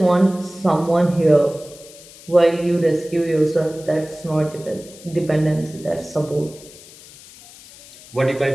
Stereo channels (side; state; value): left; noise; hiss, 20 dB below the sound